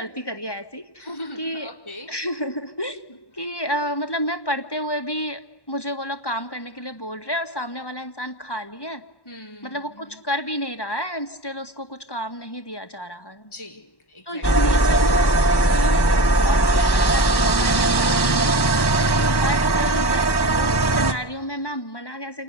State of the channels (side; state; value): right; late; 1.1 ms